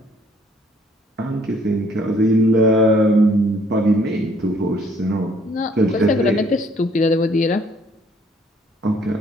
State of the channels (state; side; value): normal; both; correlation 0.62